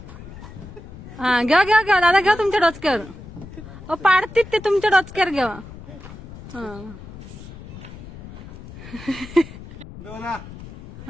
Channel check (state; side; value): noise; left; rumble, 14 dB below the sound